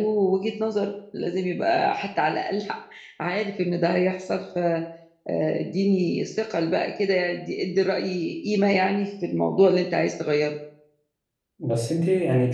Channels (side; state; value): both; identical; correlation 1.00